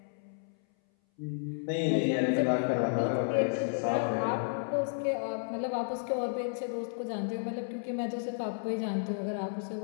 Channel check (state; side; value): silent; right; 56 dB below the other